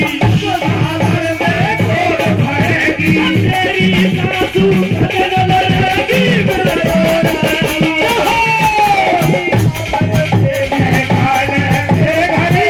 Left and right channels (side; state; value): both; identical; correlation 1.00